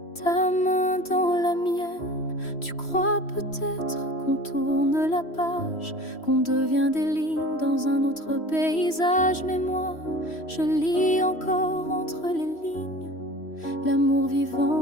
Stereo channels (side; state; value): right; late; 3.1 ms